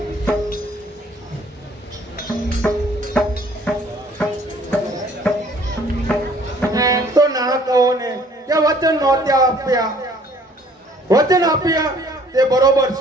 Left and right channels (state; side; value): normal; both; correlation 0.58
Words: તો ના કહો ને કે વચન નહોતા આપ્યા. વચન આપ્યા તે બરોબર